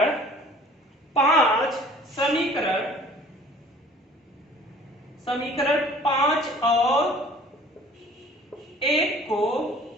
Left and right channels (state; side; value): normal; both; correlation 0.50